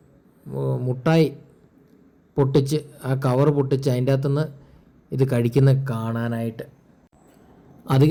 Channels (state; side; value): identical; both; correlation 1.00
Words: മുട്ടായി പൊട്ടിച്ച് ആ കവർ പൊട്ടിച്ച് അതിൻ്റെ അകത്തുനിന്ന് ഇത് കഴിക്കുന്ന കാണാനായിട്ട്.